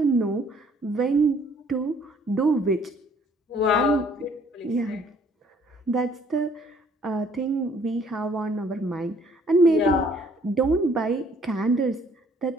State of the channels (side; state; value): both; normal; correlation 0.61